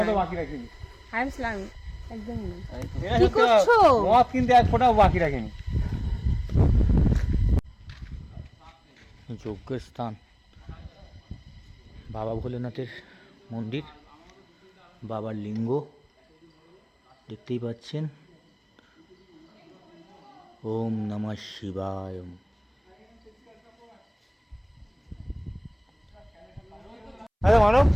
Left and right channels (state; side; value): identical; both; correlation 1.00